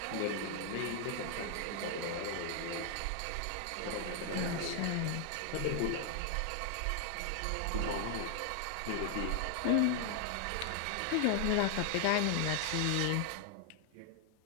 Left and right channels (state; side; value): different; both; correlation 0.00